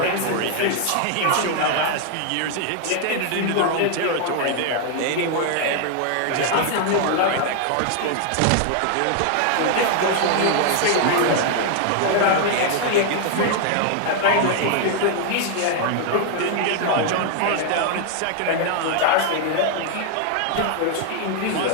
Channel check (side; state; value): both; different; correlation 0.00